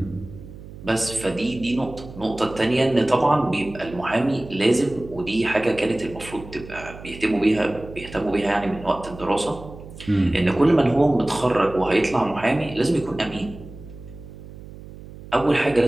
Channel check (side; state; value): right; noise; hum, 15 dB below the sound